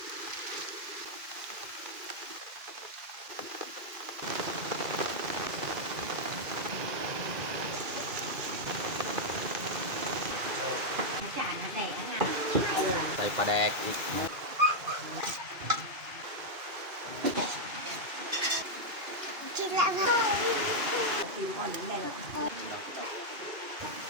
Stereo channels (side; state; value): left; late; 2.5 ms